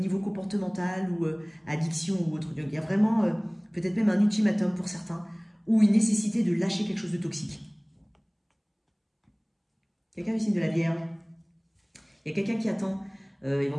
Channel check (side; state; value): both; identical; correlation 1.00